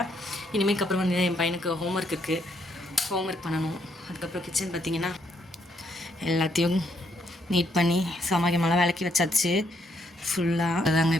இனிமேல் அப்புறம் வந்து என் பையனுக்கு ஹோம்ஒர்க் இருக்குது, ஹோம்ஒர்க் பண்ணணும். அதுக்கப்புறம் கிச்சன் பார்த்திங்கன்னா எல்லாத்தையும் நீட் பண்ணி சமைக்கமெல்லாம் விளக்கி வச்சாச்சு ஃபுல்லாக. அதாங்க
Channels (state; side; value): normal; both; correlation 0.74